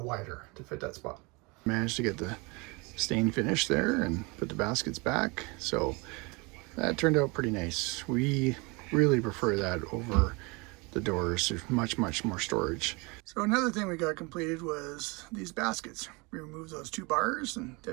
wider to fit that spot. Managed to get the stain finished there and put the baskets back, so that turned out pretty nice. We really prefer that over the doors. There's much more storage. So another thing we got completed was these baskets. We removed those two bars and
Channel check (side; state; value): left; quieter; 27.8 dB